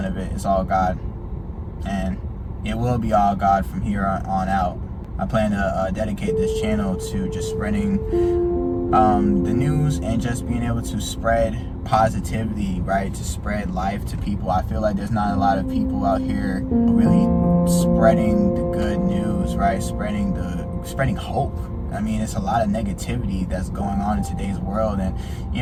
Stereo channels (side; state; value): both; identical; correlation 1.00